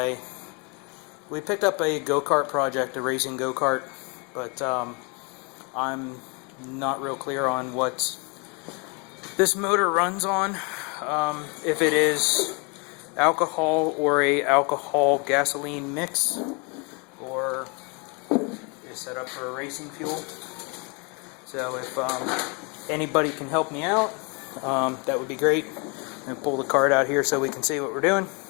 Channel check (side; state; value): right; quieter; 32.5 dB